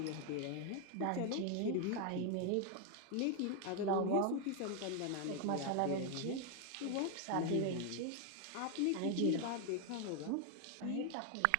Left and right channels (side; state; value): both; different; correlation 0.01